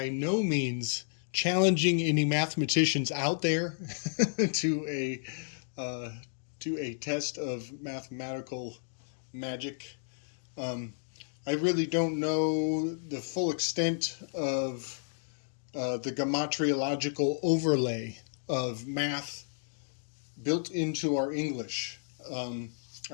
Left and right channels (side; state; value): right; silent; digital silence